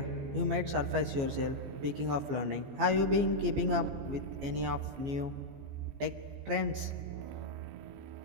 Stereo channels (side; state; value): left; late; 15 ms